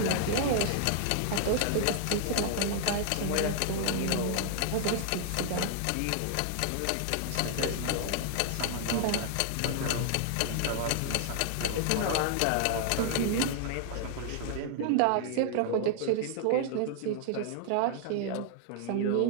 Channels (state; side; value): different; both; correlation 0.00